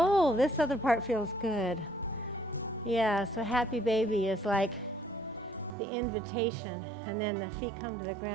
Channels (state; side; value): drops out; left; at 5.8 s